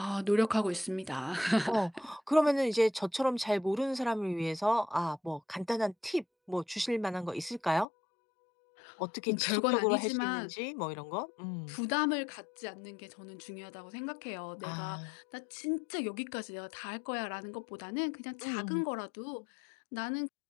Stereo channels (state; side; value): drops out; right; at 7.9 s